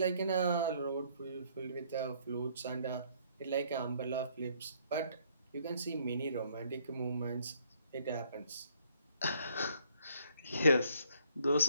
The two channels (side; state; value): both; inverted; correlation -0.65